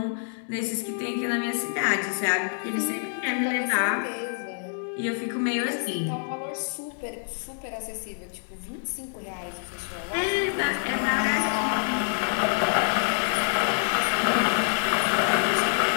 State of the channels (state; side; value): silent; right; 60 dB below the other